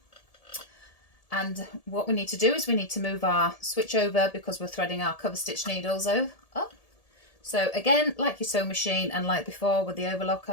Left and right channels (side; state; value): right; late; 1.7 ms